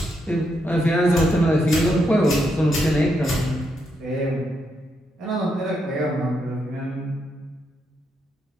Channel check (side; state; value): both; normal; correlation 0.80